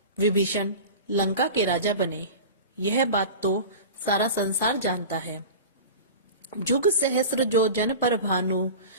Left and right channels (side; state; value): both; inverted; correlation -0.33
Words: विभीषण लंका के राजा बने। यह बात तो सारा संसार जानता है। जुग सहस्र जो जन पर भानु,